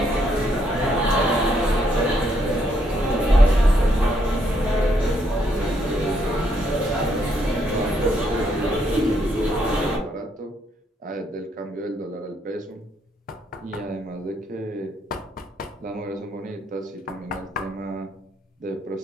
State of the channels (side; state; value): both; normal; correlation 0.73